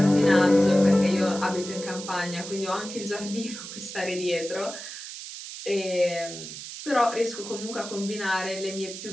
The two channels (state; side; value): noise; right; hiss, 10 dB below the sound